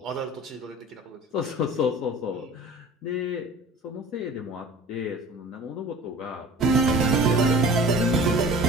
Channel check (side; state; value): both; normal; correlation 0.41